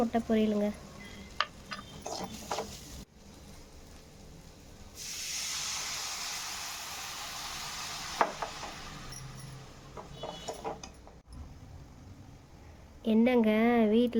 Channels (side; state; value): both; identical; correlation 1.00